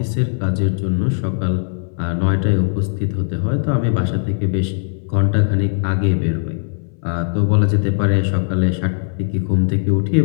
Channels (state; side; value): silent; right; 63 dB below the other